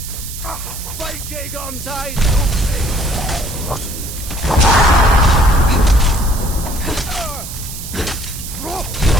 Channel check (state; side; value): noise; right; hiss, 10 dB below the sound